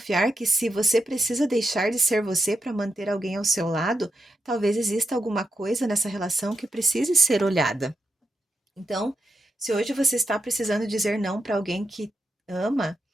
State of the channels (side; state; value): both; normal; correlation 0.86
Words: que se você precisa deixar de ser você para manter alguém ao seu lado, talvez exista alguma coisa nessa relação que precise ser olhada. Então, se hoje você está precisando dizer não para alguém que ama,